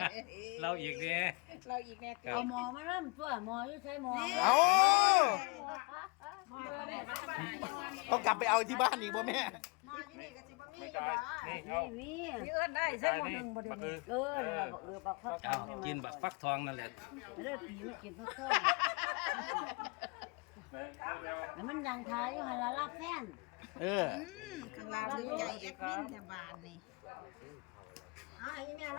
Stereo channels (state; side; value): quieter; right; 30.6 dB